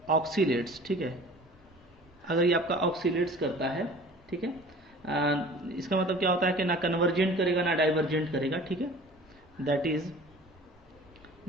oscillates, ठीक है। अगर ये आपका ऑक्सीलेट्स करता है, ठीक है, इसका मतलब क्या होता है कि ना कन्वर्जेंट करेगा ना डाइवर्जेंट करेगा, ठीक है। That is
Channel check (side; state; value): both; normal; correlation 0.45